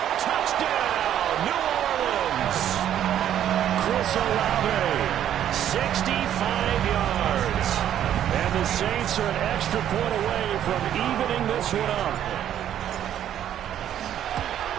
Touchdown, New Orleans. Chris Olave, 65 yards. And the Saints are an extra point away from evening this one up.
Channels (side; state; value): left; quieter; 10.7 dB